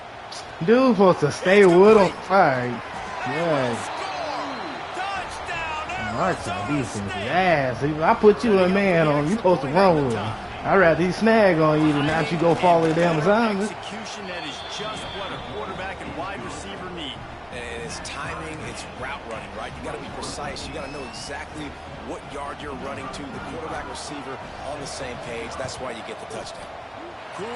Dude supposed to stay with him. All right. Yeah. Arkansas defense is ass. I put you a man on, you supposed to run with him. I'd rather he snag on you than not you go follow the damn assignment. Execution that is just what a quarterback and wide receiver need. And it's timing, it's route running, right? You got to be precise. You got to know exactly what yard you're running to. The quarterback receiver on the same page. That's why you get the touchdown.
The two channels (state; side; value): identical; both; correlation 1.00